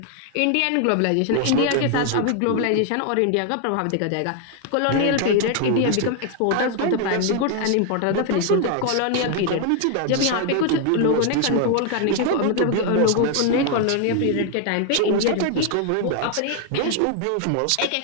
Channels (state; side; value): different; both; correlation 0.00